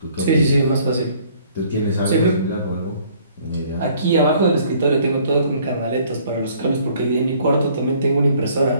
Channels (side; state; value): both; inverted; correlation -0.59